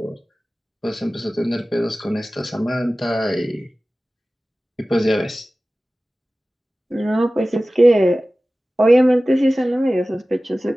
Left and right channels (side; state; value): both; normal; correlation 0.97